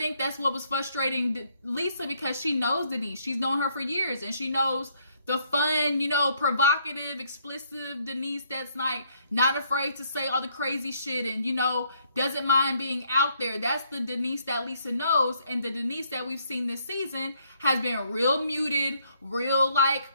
that's what was frustrating Lisa, because she knows Denise. She's known her for years, and she knows the fun, provocative, explicit Denise that's like not afraid to say all the crazy shit and, doesn't mind being out there. That's the Denise that Lisa knows. And the Denise that we've seen this season has been real muted, real like,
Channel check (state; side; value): inverted; both; correlation -0.69